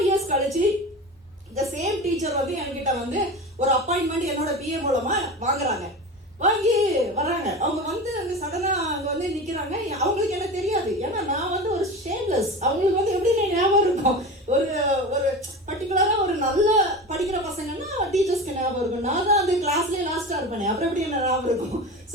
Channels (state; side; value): normal; both; correlation 0.29